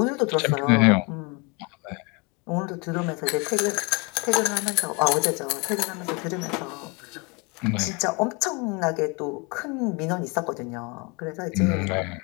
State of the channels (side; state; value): right; quieter; 30.2 dB